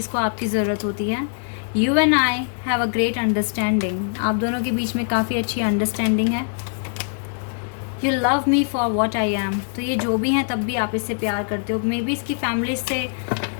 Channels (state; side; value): silent; right; digital silence